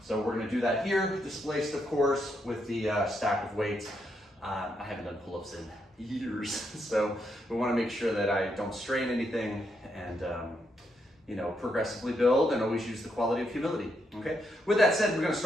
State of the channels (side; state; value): both; normal; correlation 0.79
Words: So we're going to do that here, displaced, of course, with the stack of weights. I haven't done pull-ups in years, so we want to make sure that I don't strain anything and progressively build and always use the quality of humility. Okay. With that said, we're going to